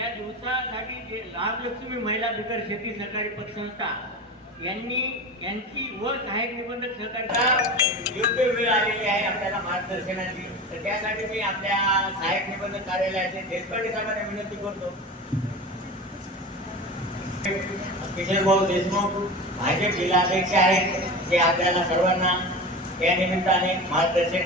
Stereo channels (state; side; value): normal; both; correlation 0.30